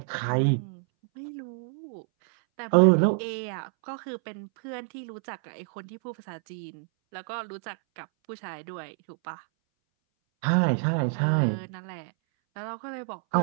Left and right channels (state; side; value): silent; left; 59 dB below the other